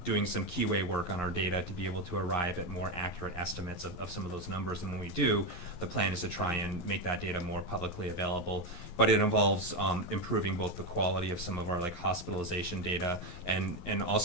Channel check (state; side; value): late; right; 11 ms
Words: doing some keyway work on our data to be able to arrive at more accurate estimates of some of those numbers. And when we do, the plan is to try and make that data more publicly available. But it involves improving both the quality of some of our hospitalization data and